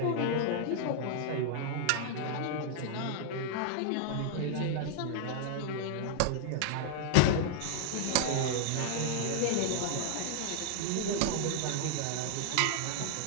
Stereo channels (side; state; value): both; different; correlation -0.01